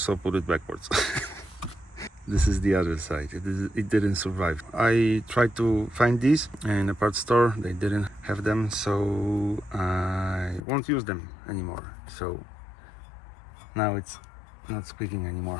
put it backwards. This is the other side. It didn't survive. I tried to find these in a parts store. They didn't have them, so I won't use them anymore. So now it's not squeaking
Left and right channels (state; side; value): drops out; right; at 10.6 s